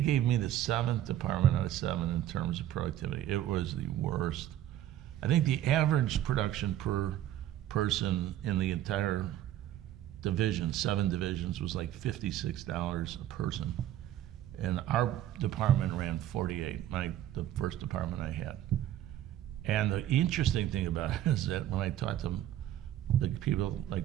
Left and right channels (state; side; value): quieter; left; 12.3 dB